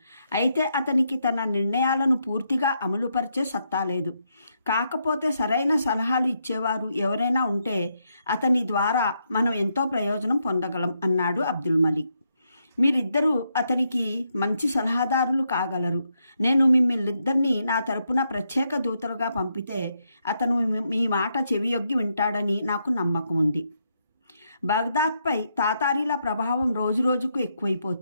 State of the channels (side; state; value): both; inverted; correlation -0.79